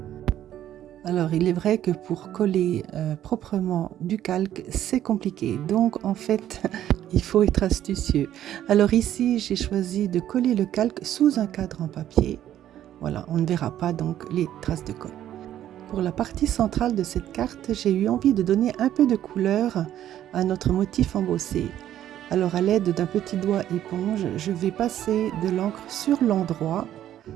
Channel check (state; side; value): quieter; left; 11.7 dB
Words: Alors, il est vrai que pour coller proprement du calque, c'est compliqué. Donc, en fait, il faut être astucieux. Alors ici, j'ai choisi de coller le calque sous un cadre en papier. Voilà, on ne verra pas donc les traces de colle. Pour la partie centrale de cette carte, j'ai eu envie de donner un peu de couleur à notre motif embossé. Alors, à l'aide d'un petit doigt éponge, je vais passer de l'encre sur l'endroit,